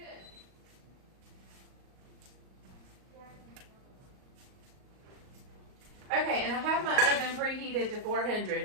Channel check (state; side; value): late; left; 38 ms